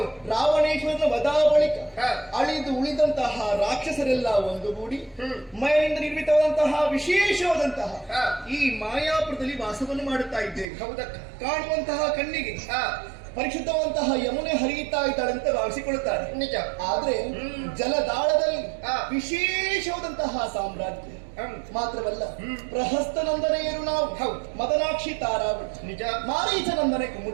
ರಾವಣೇಶ್ವರನ ವಧಾ ಬಳಿಕ ಅಳಿದು ಉಳಿದಂತಹ ರಾಕ್ಷಸರೆಲ್ಲ ಒಂದುಗೂಡಿ ಮೈನಿಂದ ನಿರ್ಮಿತವಾದಂತಹ ವಿಶೇಷವಾದಂತಹ ಈ ಮಾಯಾಪುರದಲ್ಲಿ ವಾಸವನ್ನು ಮಾಡುತ್ತಾ ಇದ್ದೇವೆ. ಹೌದಕ್ಕ. ಕಾಣುವಂತಹ ಕಣ್ಣಿಗೆ ಪರಿಶುದ್ಧವಂತಹ ಯಮುನೆ ಹರಿಯುತ್ತಾ ಇದ್ದಾಳಂತ ಭಾವಿಸಿಕೊಳ್ಳುತ್ತಾರೆ. ನಿಜ. ಆದ್ರೆ ಜಲದಾಳದಲ್ಲಿ ವಿಶೇಷವಾದಂತಹ ಸಾಮ್ರಾಜ್ಯ ಮಾತ್ರವಲ್ಲ, ಪ್ರಹಸ್ತನಂದನೆಯರು ನಾವು. ಮದನಾಕ್ಷಿ ತಾರಾವಳಿ, ನಿಜ. ಮಾರೀಚನಂದನೆ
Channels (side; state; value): left; drops out; at 10.7 s